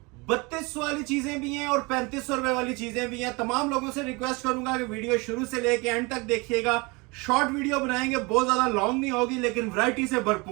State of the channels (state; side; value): quieter; left; 26.5 dB